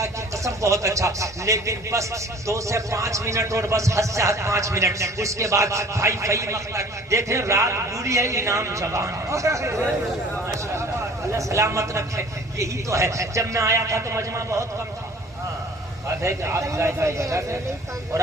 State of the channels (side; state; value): both; normal; correlation 0.48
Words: کی قسم بہت اچھا، لیکن بس 2 سے 5 منٹ اور بس حد سے حد 5 منٹ، اس کے بعد بھائی فہیم اختر دیکھیں رات بوڑھی ہے انعام جوان، اللہ سلامت رکھے۔ یہی تو ہے، جب میں آیا تھا تو مجمع بہت کم تھا، بات ہے کہ آپ ظاہر جگہ تھے، اور